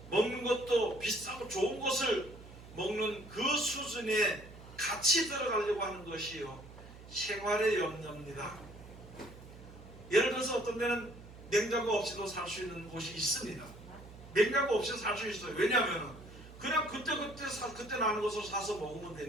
먹는 것도 비싸고 좋은 것을 먹는 그 수준에 같이 들어가려고 하는 것이요, 생활의 염려입니다. 예를 들어서 어떤 데는 냉장고 없이도 살 수 있는 곳이 있습니다. 냉장고 없이 살 수 있어요. 왜냐하면 그냥 그때 나는 것을 사서 먹으면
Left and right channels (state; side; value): noise; right; hum, 17 dB below the sound